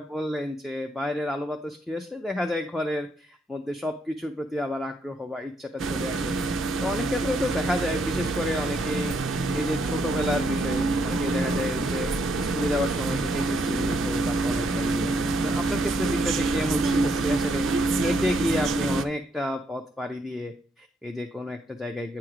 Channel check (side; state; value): both; normal; correlation 0.74